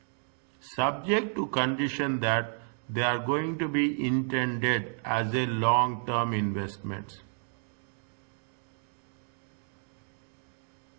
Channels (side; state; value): left; silent; 57 dB below the other